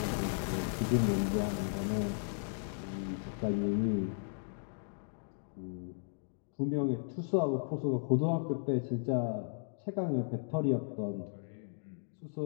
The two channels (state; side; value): silent; right; digital silence